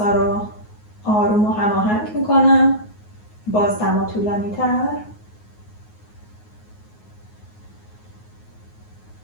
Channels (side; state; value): right; late; 9.5 ms